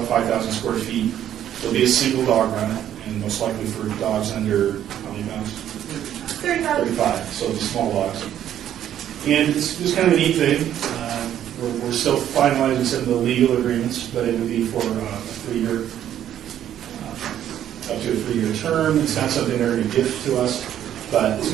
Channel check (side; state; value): left; quieter; 10.9 dB